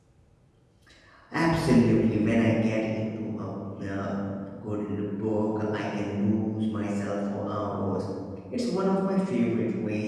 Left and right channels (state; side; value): identical; both; correlation 1.00